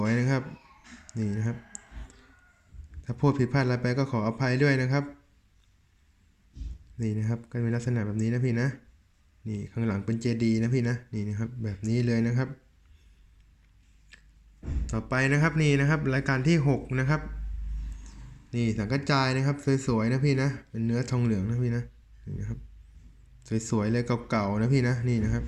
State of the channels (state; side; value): identical; both; correlation 1.00